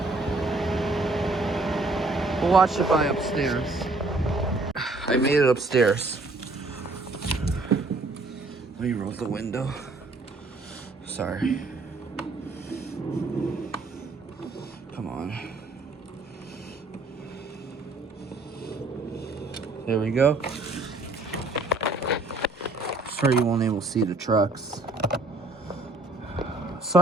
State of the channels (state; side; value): quieter; left; 3.1 dB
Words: We'll watch it by upstairs. I made it upstairs. Let me roll the window. Sorry. Come on. There we go. Sorry you won't able to see the trucks.